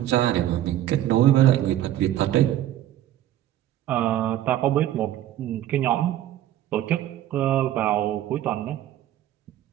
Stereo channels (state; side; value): quieter; left; 12.7 dB